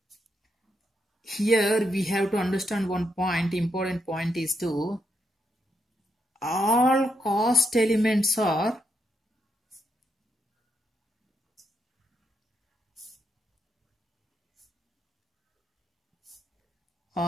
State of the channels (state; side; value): normal; both; correlation 0.80